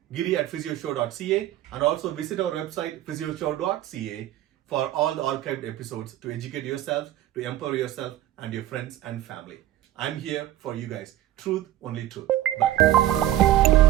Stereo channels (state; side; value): quieter; left; 13.7 dB